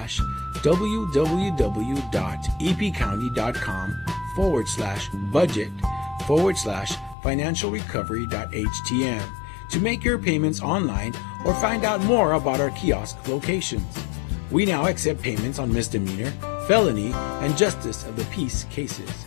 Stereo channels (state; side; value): drops out; right; at 7.2 s